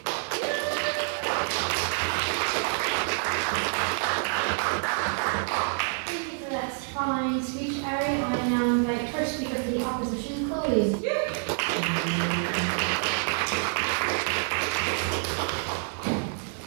Thank you for that fine speech, Eri. I now invite first speaker for the opposition, Chloe.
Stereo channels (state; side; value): silent; left; 60 dB below the other